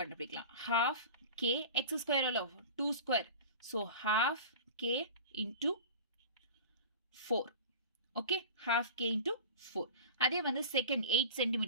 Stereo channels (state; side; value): inverted; both; correlation -0.35